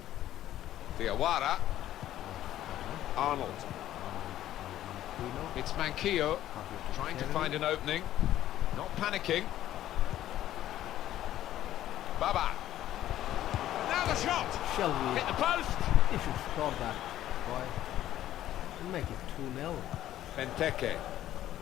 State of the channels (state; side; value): quieter; right; 12.9 dB